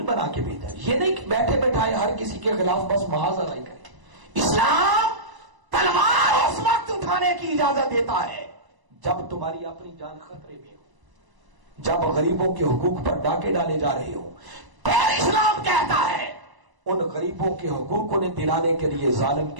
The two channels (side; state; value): left; late; 1.0 ms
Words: بنا کے بھیجا۔ یہ نہیں کہ بیٹھے بیٹھائے ہر کسی کے خلاف بس محاذ نہیں کرے۔ اسلام تلوار اس وقت اٹھانے کی اجازت دیتا ہے جب تمہاری اپنی جان خطرے میں ہو، جب غریبوں کے حقوق پر ڈاکے ڈالے جا رہے ہو۔ پھر اسلام کہتا ہے ان غریبوں کے حقوق انہیں دلانے کے لیے ظالم